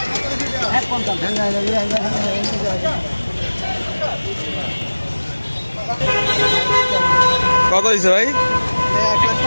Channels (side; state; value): both; inverted; correlation -1.00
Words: কত হয়েছে ভাই?